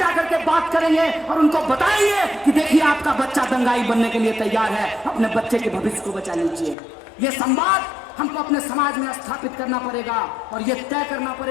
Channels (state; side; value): drops out; right; at 6.8 s